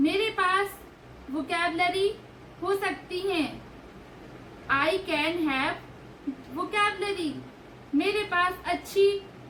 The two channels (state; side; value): identical; both; correlation 1.00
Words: पास वोकैबुलरी हो सकती है, आई कैन हैव वोकैबुलरी। मेरे